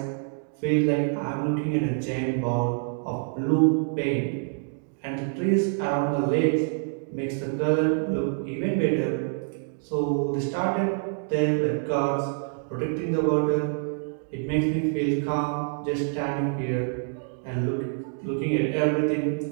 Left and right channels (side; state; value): left; silent; 61 dB below the other